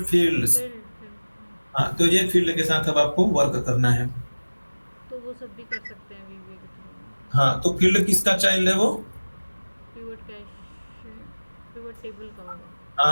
फील्ड्स। Field field. हाँ, तो ये फील्ड के साथ अब आपको वर्क करना है। तो वो सब भी कर सकते हैं वीवीए के थ्रू। हाँ, तो फील्ड किसका चाइल्ड है वो? पिवट कैश, पिवट टेबल का होगा।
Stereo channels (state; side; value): inverted; both; correlation -1.00